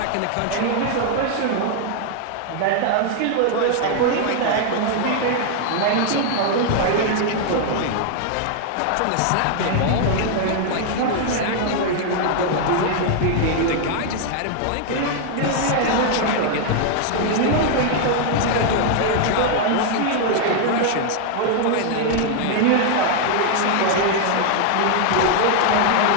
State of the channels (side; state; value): both; different; correlation 0.00